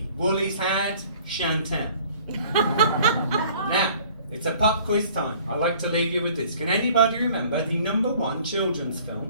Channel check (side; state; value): both; inverted; correlation -0.53